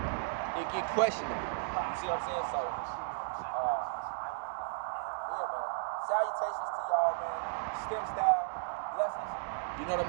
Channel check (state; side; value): silent; left; digital silence